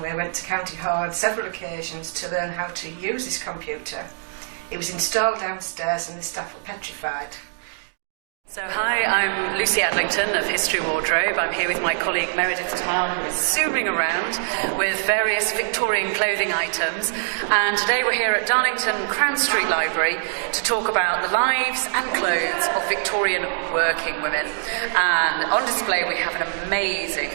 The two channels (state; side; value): silent; left; digital silence